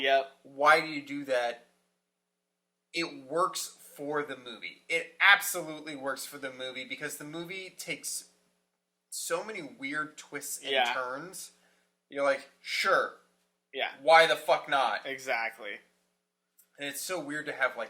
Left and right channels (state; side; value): identical; both; correlation 1.00